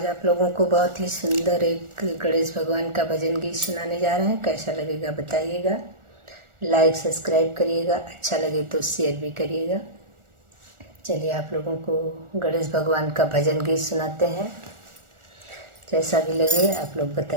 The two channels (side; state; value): left; late; 1.4 ms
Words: आप लोगों को बहुत ही सुंदर एक गणेश भगवान का भजन गीत सुनाने जा रहे हैं। कैसा लगेगा बताइएगा, लाइक सब्सक्राइब करिएगा, अच्छा लगे तो शेयर भी करिएगा। चलिए आप लोगों को गणेश भगवान का भजन गीत सुनाते हैं। जैसा भी लगे आप लोग